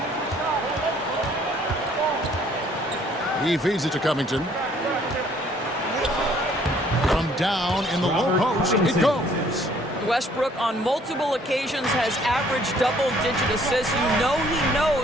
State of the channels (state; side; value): normal; both; correlation 0.60